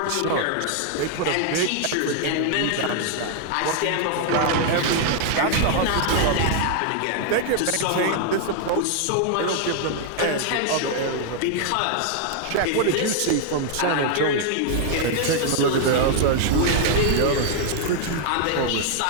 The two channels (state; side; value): different; both; correlation 0.00